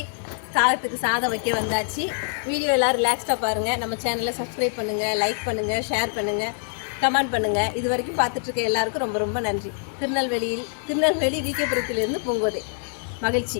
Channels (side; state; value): right; silent; 60 dB below the other